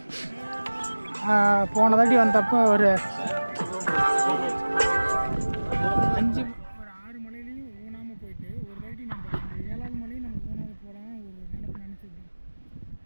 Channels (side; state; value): both; inverted; correlation -1.00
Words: போன தாட்டி வந்தப்போ ஒரு 6 மலையிலையும் ஊனாமல் போயிட்டு ஒரு தாட்டி நம்ம இந்த 7வது மலையும் நம்ம ஊனாமல் போகலாம் ஒரு நினச்சிருந்தோம்.